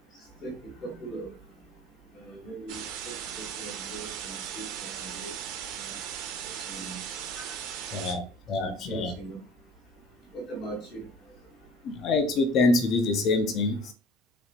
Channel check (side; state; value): both; normal; correlation 0.48